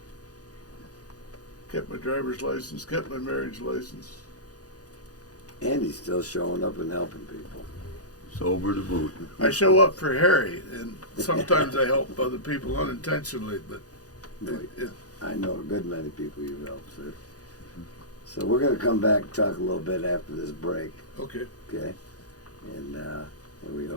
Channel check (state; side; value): late; right; 0.67 ms